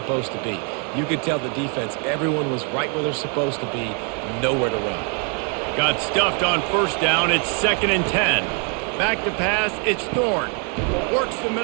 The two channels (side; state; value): left; quieter; 38.3 dB